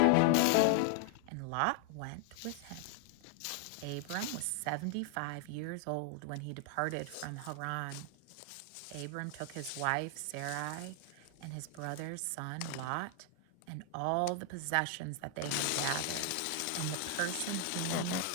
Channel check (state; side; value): different; both; correlation 0.00